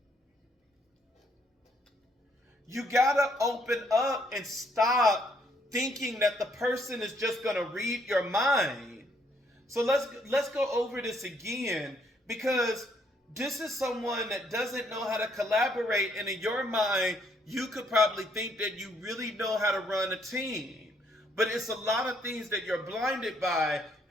You got to open up and stop thinking that the person is just going to read your mind. So let's go over this again, because this is someone that doesn't know how to collaborate, and in your mind, you could probably think that you really know how to run a team. But it's a lot of things that you're blinded by,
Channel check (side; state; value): both; normal; correlation 0.70